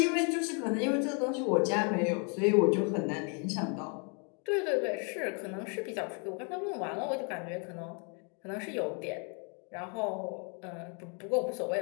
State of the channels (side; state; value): right; quieter; 37.6 dB